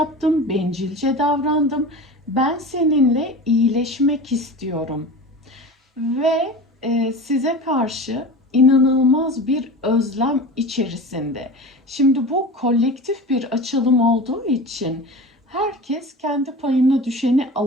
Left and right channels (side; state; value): both; normal; correlation 0.33